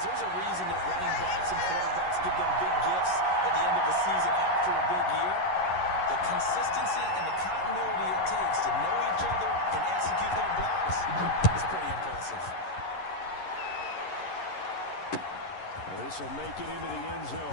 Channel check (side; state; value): right; late; 11 ms